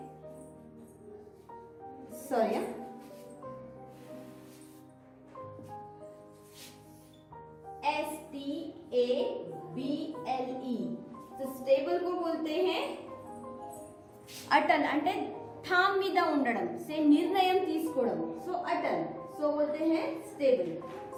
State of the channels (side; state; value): both; identical; correlation 1.00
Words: Sorry, STABLE। तो स्टेबल को बोलते हैं अटल। అంటే థామ్ మీద ఉండడం, से निर्णय తీసుకోవడం। सो अटल। सो बोलते हैं स्टेबल।